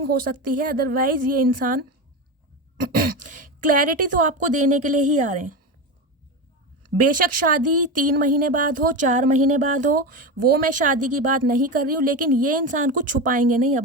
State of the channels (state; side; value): normal; both; correlation 0.20